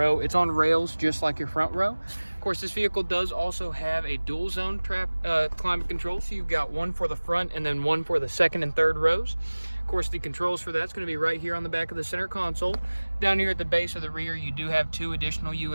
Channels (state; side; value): inverted; both; correlation -1.00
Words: It's on rails just like your front row. Of course, this vehicle does also have a dual zone climate control. So you've got one for the front and then one for the second and third rows. Of course, the controls for that's going to be right here on the back of the center console. Down here at the base of the rear, you do have 2 additional